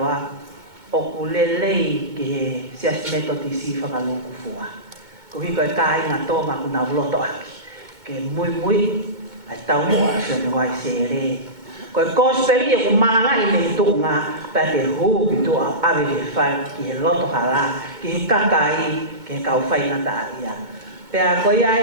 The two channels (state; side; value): late; left; 2.2 ms